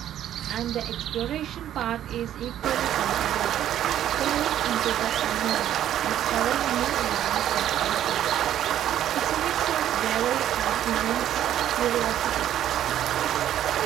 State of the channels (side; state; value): left; quieter; 11.3 dB